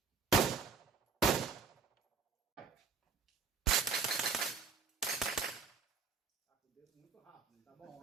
Tá com o dedo muito rápido, tá bom,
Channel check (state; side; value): quieter; left; 5.3 dB